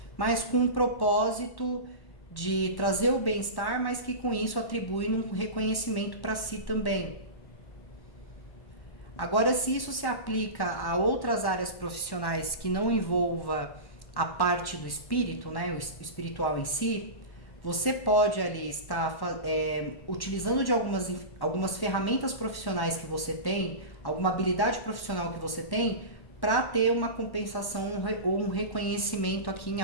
mas com um propósito de trazer o bem-estar, mas que com isso atribui um reconhecimento para si também. Agora, se isso se aplica a outras áreas profissionais que não envolva a parte do espírito, né, o espiritual em si, você pode ali estar utilizando de algumas ferramentas profissionais que você tem, alguma habilidade profissional que você tem, para ter uma compensação ou um reconhecimento aqui em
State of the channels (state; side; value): late; right; 1.1 ms